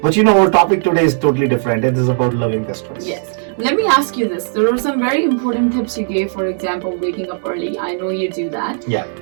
our topic today is totally different. It is about loving the stress. Yes. Let me ask you this. There are some very important tips you gave, for example, waking up early. I know you do that. Yeah.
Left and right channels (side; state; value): left; silent; 69 dB below the other